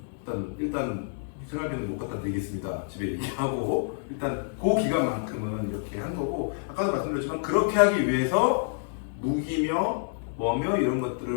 일단 생활비는 못 갖다 드리겠습니다. 집에 얘기하고 일단 그 기간만큼은 이렇게 한 거고 아까도 말씀드렸지만 그렇게 하기 위해서 무기며 뭐며 이런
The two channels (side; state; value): right; silent; 59 dB below the other